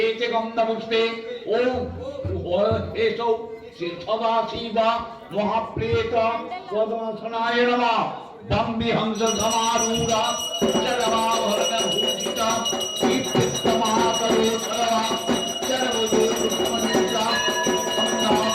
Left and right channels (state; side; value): identical; both; correlation 1.00